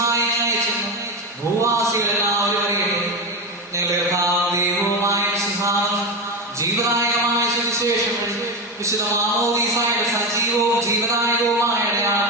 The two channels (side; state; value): both; normal; correlation 0.17